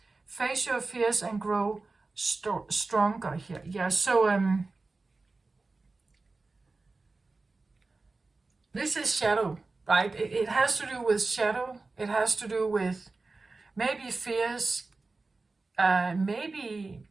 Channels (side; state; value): left; quieter; 3.6 dB